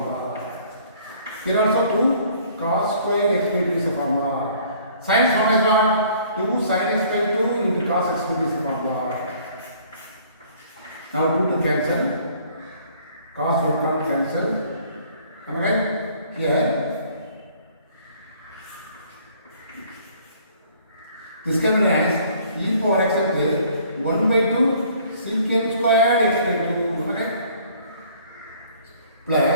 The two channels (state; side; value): inverted; both; correlation -0.57